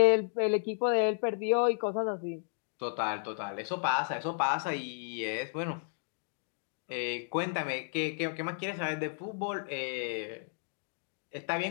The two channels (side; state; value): right; silent; digital silence